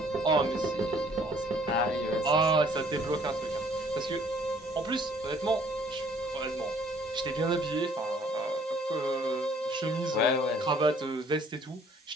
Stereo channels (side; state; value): both; normal; correlation 0.60